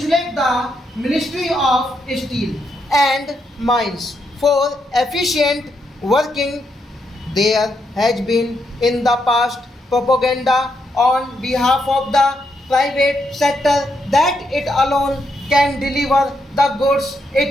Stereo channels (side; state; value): both; normal; correlation 0.79